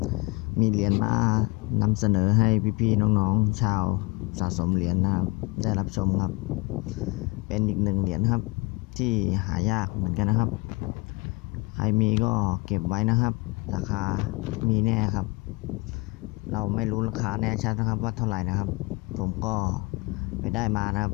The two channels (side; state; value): right; quieter; 26.5 dB